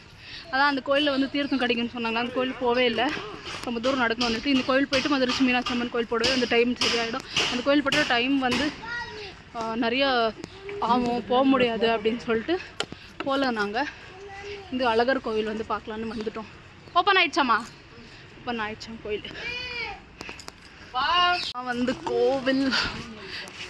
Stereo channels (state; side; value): identical; both; correlation 1.00